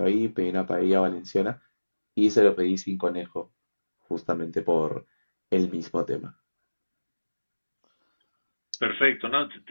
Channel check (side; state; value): both; inverted; correlation -1.00